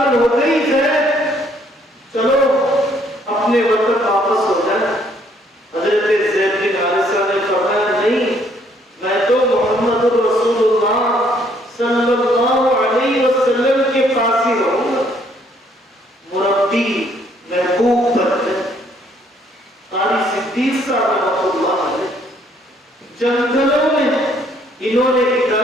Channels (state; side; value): normal; both; correlation 0.66